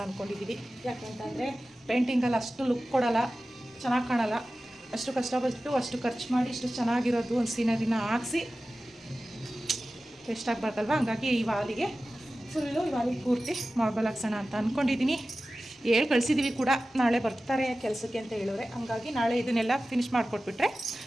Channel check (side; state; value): both; normal; correlation 0.95